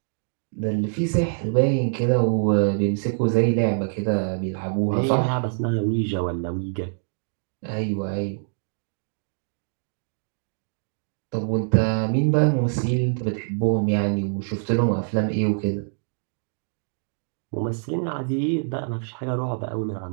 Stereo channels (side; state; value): left; silent; digital silence